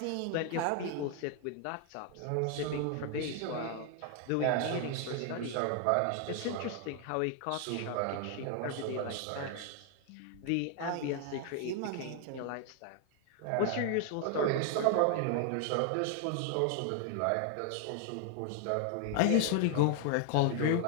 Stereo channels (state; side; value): different; both; correlation 0.00